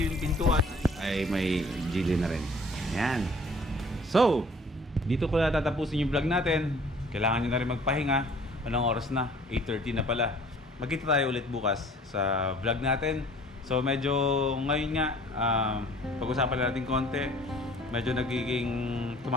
pintuan ay may Geely na rin. Ayan. So, dito ko na tatapusin yung vlog natin. Kailangan nyo na rin magpahinga. Anong oras na? 8:30 na pala. Magkita tayo ulit bukas sa vlog natin. So medyo ngayon nga, pag-usapan natin konti. Medyo nagiging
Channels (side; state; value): both; normal; correlation 0.52